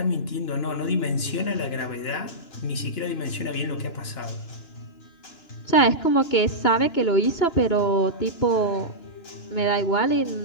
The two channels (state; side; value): late; right; 2.9 ms